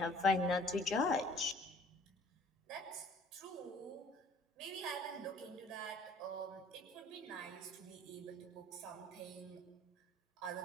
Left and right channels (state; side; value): normal; both; correlation 0.53